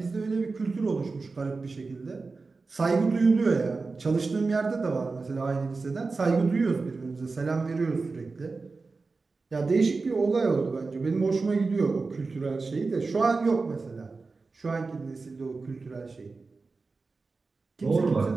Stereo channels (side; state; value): left; quieter; 4.0 dB